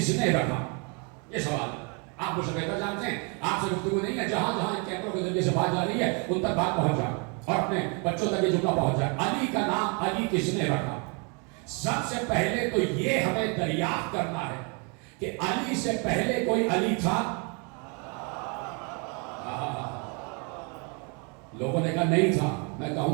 نے رکھا؟ یہ سوال ہے. آپ مجھ سے بہتر جانتے ہیں، آپ سے گفتگو نہیں ہے، جہاں جہاں ان کیمروں کے ذریعے سے بات جا رہی ہے ان تک بات پہنچ جائے اور اپنے بچوں تک یہ جملہ پہنچ جائے۔ علی کا نام علی کس نے رکھا؟ سب سے پہلے تو یہ ہمیں دریافت کرنا ہے کہ علی سے پہلے کوئی علی تھا؟ لوگوں نے کہا نہیں تھا، میں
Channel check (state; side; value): quieter; left; 34.7 dB